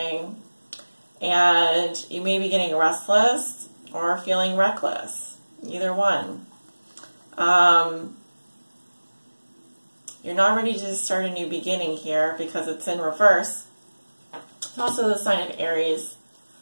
and you may be getting restless or feeling reckless. Either one. You're not ready to start a new beginning here because it's in reverse. It's also the sign of Aries.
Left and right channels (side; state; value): both; inverted; correlation -1.00